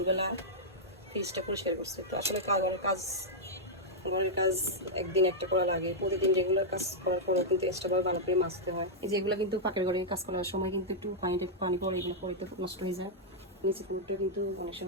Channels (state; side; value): normal; both; correlation -0.06